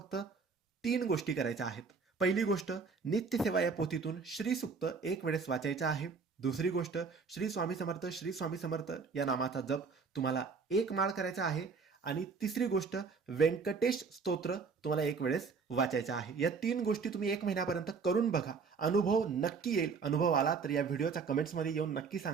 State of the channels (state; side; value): quieter; left; 5.1 dB